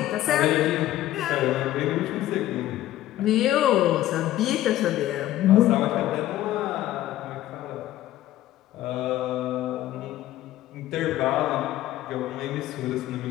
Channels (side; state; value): right; quieter; 14.1 dB